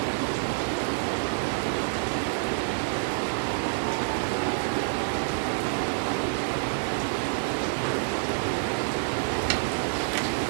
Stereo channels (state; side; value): silent; left; digital silence